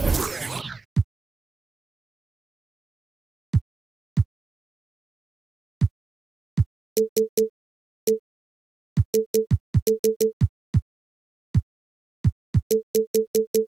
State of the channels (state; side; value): quieter; left; 4.0 dB